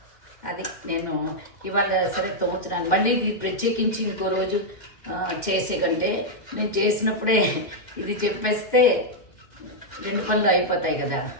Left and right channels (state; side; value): late; right; 2.1 ms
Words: అది నేను ఇవాళ సరే తోముతున్నాను. మళ్ళీ ఇది ప్రత్యేకించి ఇంకో రోజు చేసే కంటే నేను చేసినప్పుడే ఇది చెప్పేస్తే 2 పనులు అయిపోతాయి కదా